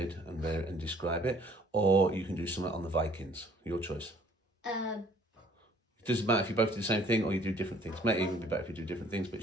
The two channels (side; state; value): both; normal; correlation 0.57